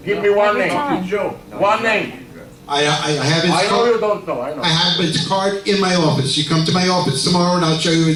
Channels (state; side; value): identical; both; correlation 1.00